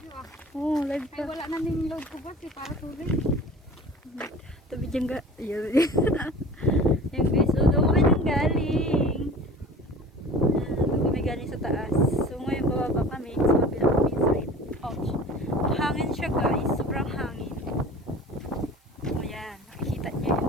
Oh, live Ay, ka. wala na ning load ko ba? Para tuloy. Tabi dyan ga. Ayan. Ayan guys, so doon kami nang galing. Doon kami galing sa taas. So ngayon bababa kami sa kabilang kami side. Ouch. Hangin siya guys. Sobrang hangin. Ayan. Nakikita niyo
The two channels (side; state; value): both; normal; correlation 0.41